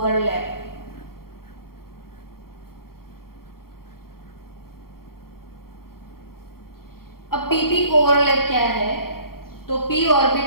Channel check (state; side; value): late; right; 0.93 ms